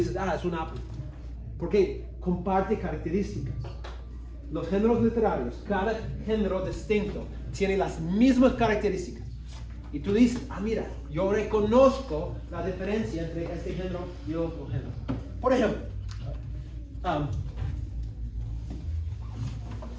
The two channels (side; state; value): both; identical; correlation 1.00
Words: es un Apple. Porque comparte características. Los géneros literarios, cada género distinto, tiene las mismas características. Y tú dices, mira, yo reconozco la diferencia entre este género y otro género. Por ejemplo,